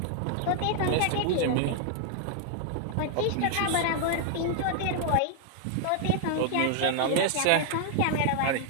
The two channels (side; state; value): both; different; correlation -0.01